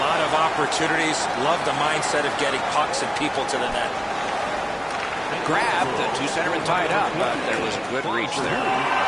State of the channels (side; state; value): both; identical; correlation 1.00